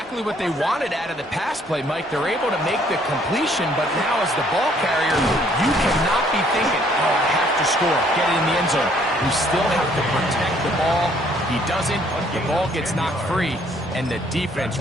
what they wanted out of the pass play, Mike. They're able to make the completion, but now as the ball carrier, you cannot be thinking, oh, I have to score, get it in the end zone. You still have to protect the ball. He doesn't. The ball gets knocked free, and the defense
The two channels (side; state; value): both; normal; correlation 0.63